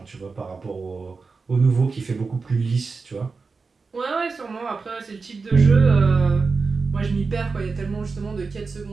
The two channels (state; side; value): quieter; left; 4.5 dB